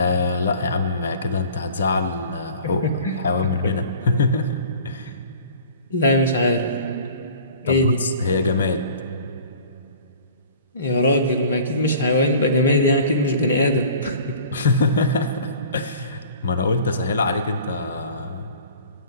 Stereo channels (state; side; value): inverted; both; correlation -0.46